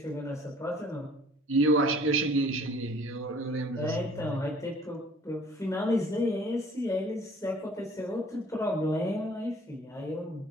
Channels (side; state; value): both; normal; correlation 0.53